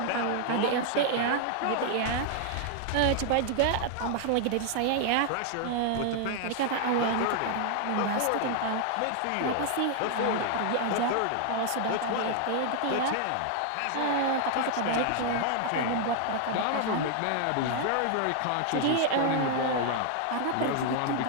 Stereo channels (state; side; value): different; both; correlation 0.00